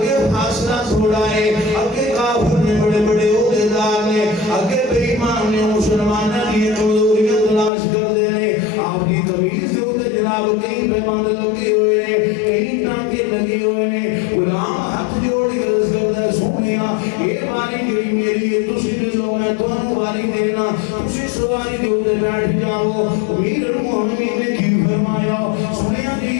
فاصلہ تھوڑا ہے اگے کافر نے بڑے بڑے عہدیدار نے اگے بے ایمان نے مسلمانوں کی کمزوریاں تلاش کر دینے آپ کی تمیز سے ہوتے جناب کہیں پیماند لگے ہوئے نے کہیں ٹانکے لگے ہوئے نے غلام ہاتھ جوڑ کے عرض کرتا ہے سونیا یہ باری جڑی میری ہے تسی دے لو میں تمہیں باری دینا تسی سواری کے اوپر بیٹھ جاؤ امیر المومنین نے کی فرمایا سنیا جی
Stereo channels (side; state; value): right; drops out; at 7.7 s